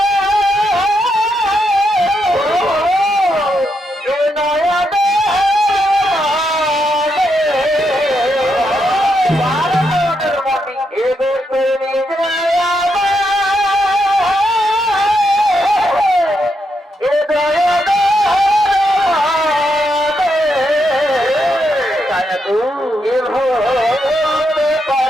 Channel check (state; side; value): normal; both; correlation 0.81